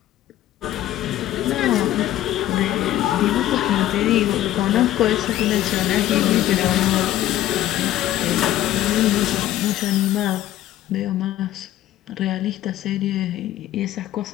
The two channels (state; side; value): quieter; right; 13.5 dB